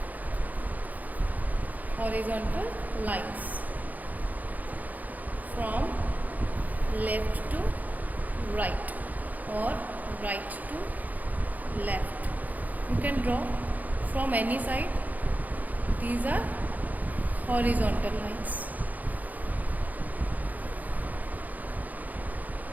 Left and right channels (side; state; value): left; late; 0.080 ms